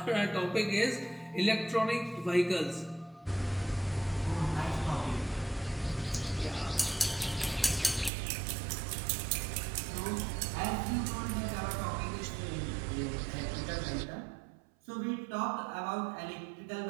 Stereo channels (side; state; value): left; drops out; at 8.1 s